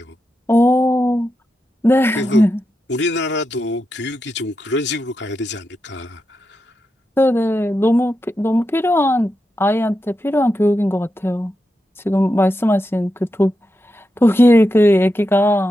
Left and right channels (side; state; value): both; normal; correlation 0.88